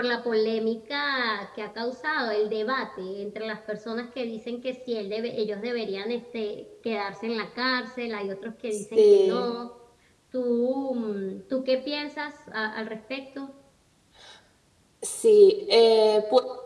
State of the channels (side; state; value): both; identical; correlation 1.00